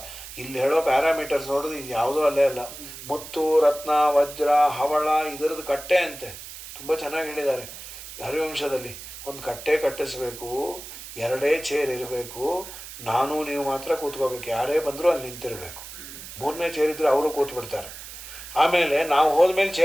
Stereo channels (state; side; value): noise; right; hiss, 13 dB below the sound